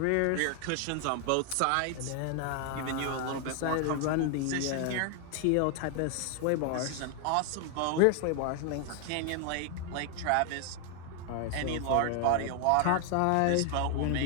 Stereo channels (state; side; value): different; both; correlation 0.00